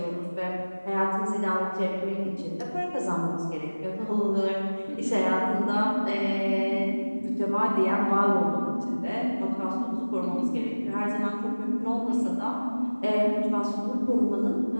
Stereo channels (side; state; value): both; inverted; correlation -1.00